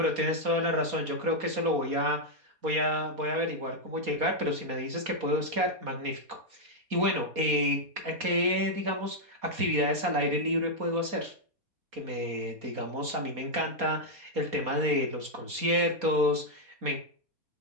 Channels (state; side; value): late; left; 4.2 ms